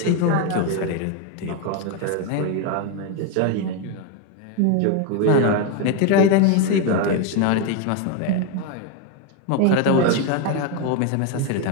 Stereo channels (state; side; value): different; both; correlation 0.02